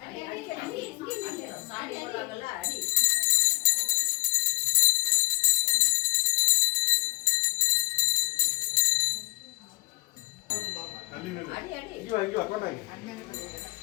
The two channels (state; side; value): quieter; right; 23.3 dB